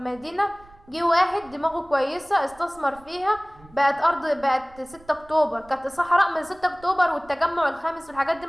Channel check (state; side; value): noise; right; rumble, 25 dB below the sound